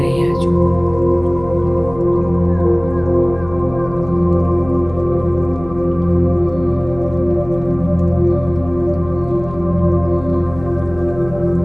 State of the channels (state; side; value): noise; left; hum, 16 dB below the sound